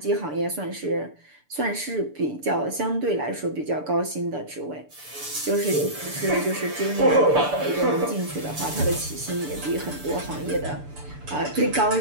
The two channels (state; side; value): late; left; 6.9 ms